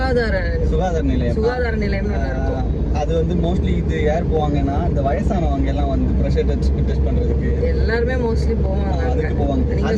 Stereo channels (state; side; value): identical; both; correlation 1.00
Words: நிலையம் இருக்கும். அது வந்து மோஸ்ட்லி இது யார் போவாங்கன்னா, இந்த வயசானவங்க எல்லாம் வந்து பிரஷர் டெஸ்ட் பண்றதுக்கு எல்லாருமே மோஸ்ட்லி போவாங்க. அதுக்கு போவாங்க. நீங்க